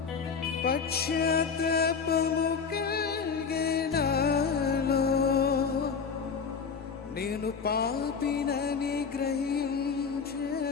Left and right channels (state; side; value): quieter; right; 5.8 dB